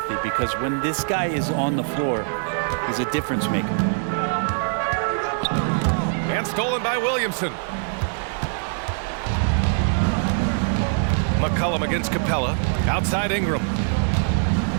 because when this guy is on the floor, he's a difference maker. And stolen by Williamson. McCollum against Capella. Outside Ingram.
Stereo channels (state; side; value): silent; left; 63 dB below the other